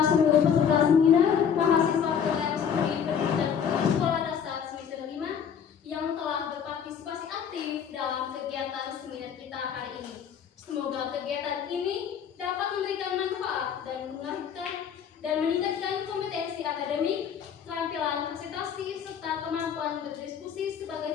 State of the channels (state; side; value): quieter; right; 7.8 dB